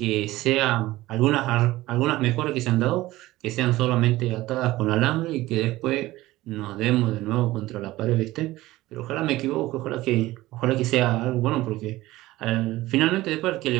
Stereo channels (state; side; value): quieter; left; 17.6 dB